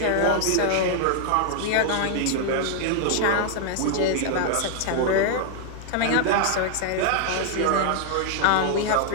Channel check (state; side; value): different; both; correlation 0.00